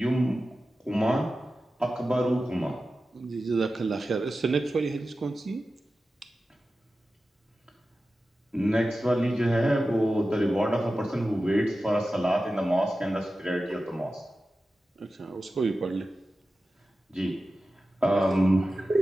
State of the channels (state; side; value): normal; both; correlation 0.94